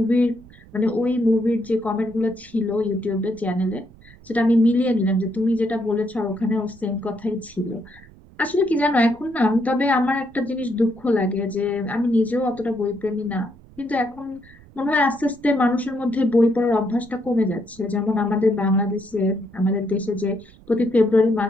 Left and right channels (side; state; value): right; noise; rumble, 23 dB below the sound